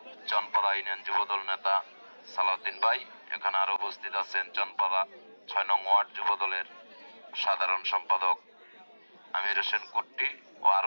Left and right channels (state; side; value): inverted; both; correlation -1.00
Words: চনপাড়া ইউনিয়ন যুব দল নেতা সালাউদ্দিন ভাই। এখানে আরো উপস্থিত আছেন চনপাড়া ৬ নং ওয়ার্ড যুব দলের সাধারণ সম্পাদক আমির হোসেন কুট্টি ও